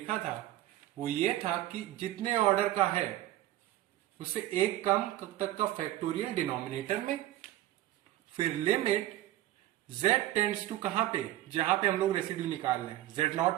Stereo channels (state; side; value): quieter; left; 14.5 dB